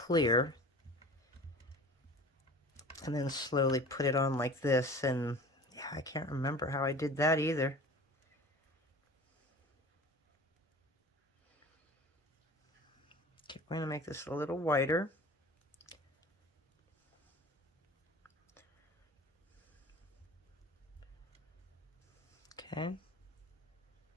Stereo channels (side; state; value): both; normal; correlation 0.40